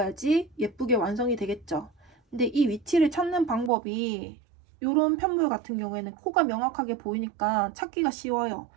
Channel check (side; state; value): left; drops out; at 3.7 s